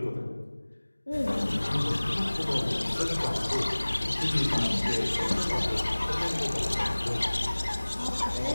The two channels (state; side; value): inverted; both; correlation -1.00